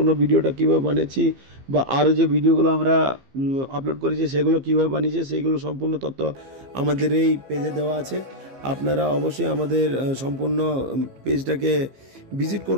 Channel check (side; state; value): left; late; 15 ms